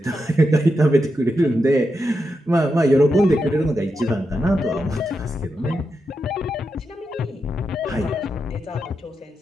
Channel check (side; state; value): both; normal; correlation 0.86